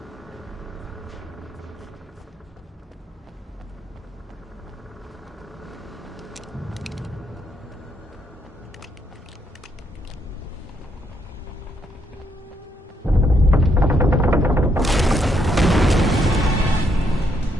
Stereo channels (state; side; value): normal; both; correlation 0.75